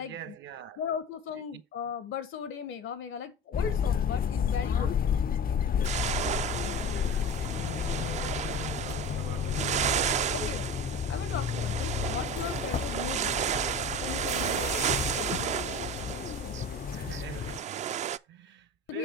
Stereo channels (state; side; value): normal; both; correlation 0.32